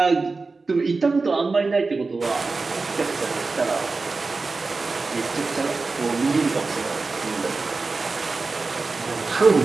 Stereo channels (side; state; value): left; quieter; 3.9 dB